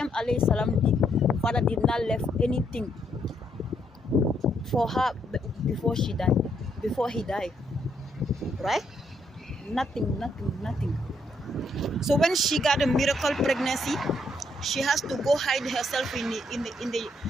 alayhi salam, father did not left anything for her before he died. Right? Nothing. So when she got a miracle pregnancy, she has to go hide herself in the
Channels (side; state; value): both; normal; correlation 0.73